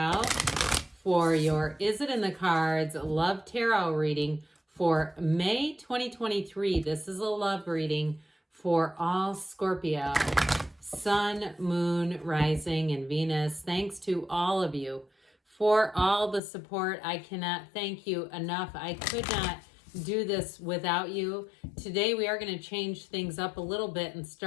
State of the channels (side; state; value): right; drops out; at 16.4 s